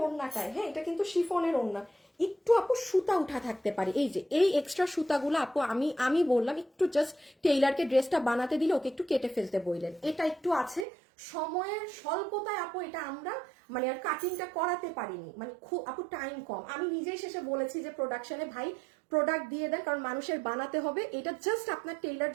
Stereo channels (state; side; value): drops out; left; at 10.9 s